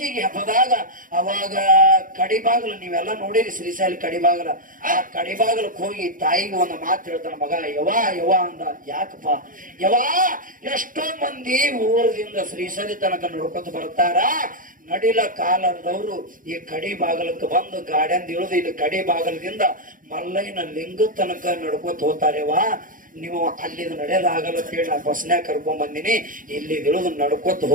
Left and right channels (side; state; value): left; late; 0.39 ms